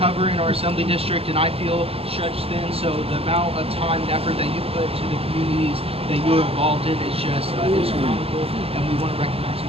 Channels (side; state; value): left; late; 0.28 ms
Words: in our assembly district, and I feel stretched thin, so the amount of time and effort that you put to the communities that you're involved in is just astronomical, and we want to recognize